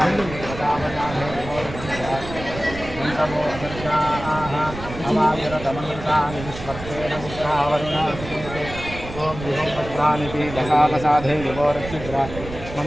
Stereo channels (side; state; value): right; noise; rumble, 11 dB below the sound